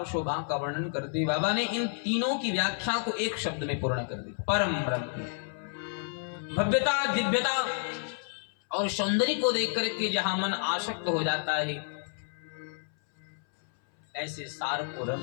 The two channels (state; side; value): silent; right; 58 dB below the other